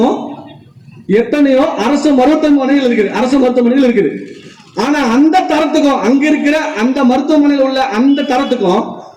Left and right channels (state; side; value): identical; both; correlation 1.00